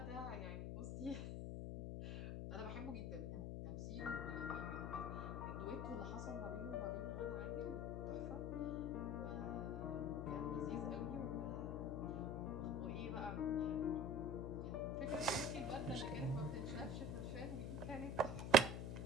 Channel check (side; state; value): left; noise; hum, 3 dB below the sound